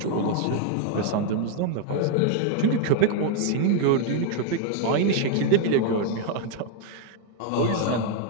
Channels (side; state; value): both; different; correlation 0.00